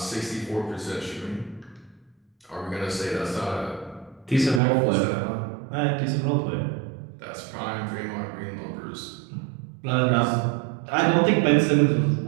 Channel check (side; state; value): left; drops out; at 4.6 s